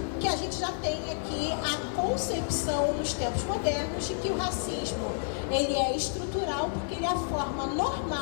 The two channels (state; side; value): silent; right; digital silence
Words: gente já tem aqui a concepção nos tempos modernos de que o racismo ele é estrutural, porque ele é a forma